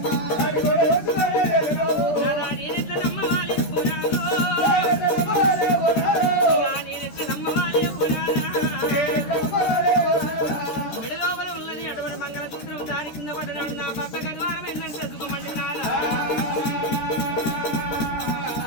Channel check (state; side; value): late; right; 13 ms